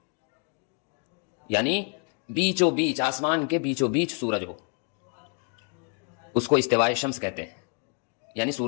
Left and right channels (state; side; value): quieter; right; 38.9 dB